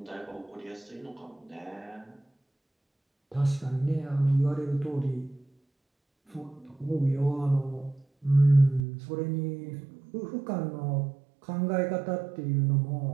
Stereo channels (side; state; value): left; drops out; at 8.8 s